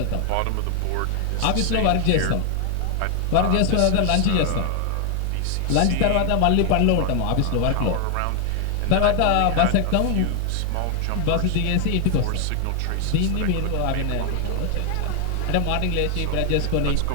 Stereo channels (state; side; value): different; both; correlation 0.00